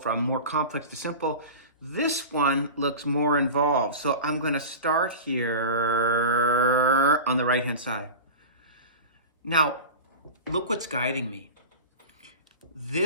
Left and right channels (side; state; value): both; inverted; correlation -0.31